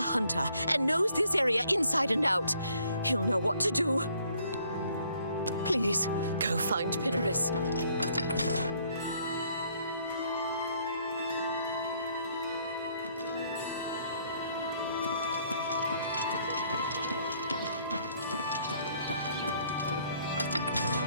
and knows this area inside and out. He'll know what to do. Please, go find Pinnerus.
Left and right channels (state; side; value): inverted; both; correlation -0.64